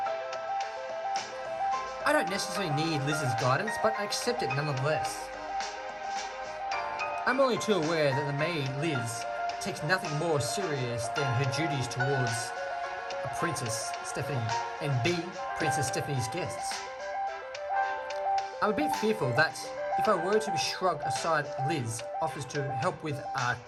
I don't necessarily need Liz's guidance, but I accept it nonetheless. I'm only too aware that the maid, Liz, takes nothing more serious than her duties towards a Princess Stephanie and B, Princess Stephanie's guests. I'm a bit fearful that if I were to shrug aside Liz offers to help with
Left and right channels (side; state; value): both; identical; correlation 1.00